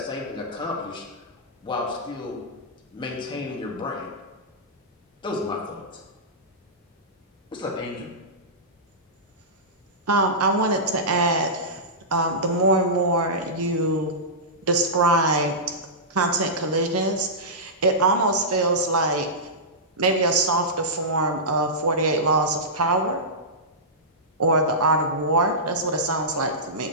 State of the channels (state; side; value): normal; both; correlation -0.16